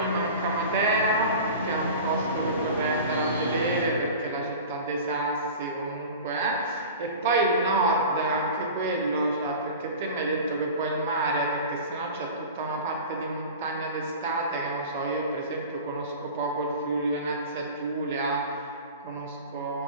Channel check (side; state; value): both; inverted; correlation -0.36